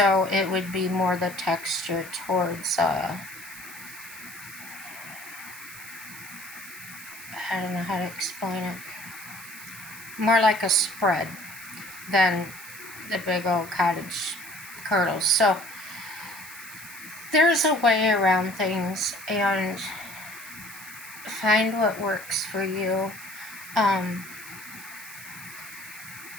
it would be more the texture towards, I don't know how to explain it. More like a spread than the big old cottage curdles. So there's a way around things, and find what works for you.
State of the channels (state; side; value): noise; right; hiss, 14 dB below the sound